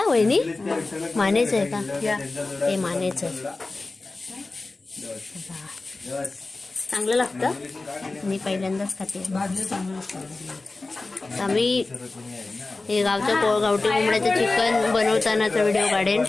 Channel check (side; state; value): right; quieter; 3.4 dB